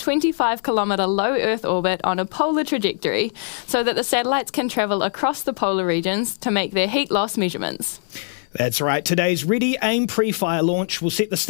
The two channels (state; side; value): silent; right; 63 dB below the other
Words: low Earth orbit on a polar trajectory so that the satellites can travel across the polar regions to make their heat loss measurements. That's right. Today's Ready, Aim, PREFIRE launch will set the